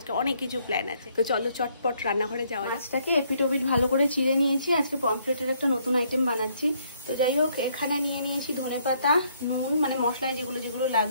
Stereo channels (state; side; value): inverted; both; correlation -0.69